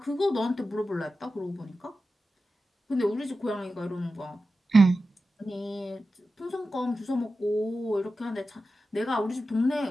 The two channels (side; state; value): both; normal; correlation 0.92